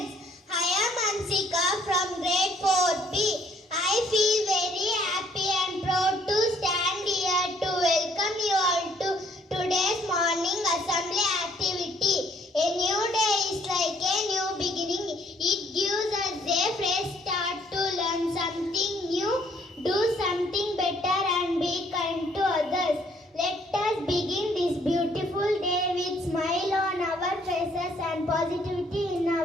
I am Ansika from grade 4B. I feel very happy and proud to stand here to welcome you all to today's morning assembly activity. A new day is like a new beginning. It gives us a fresh start to learn something new, do something better and be kind to others. Let us begin this beautiful day with smile on our faces and positivity in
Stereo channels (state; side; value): normal; both; correlation 0.64